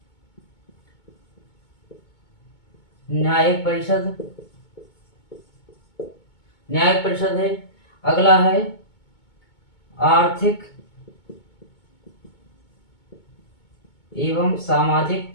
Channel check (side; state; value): right; late; 2.2 ms